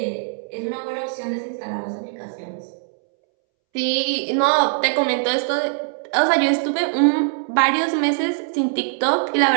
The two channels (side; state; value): left; silent; 64 dB below the other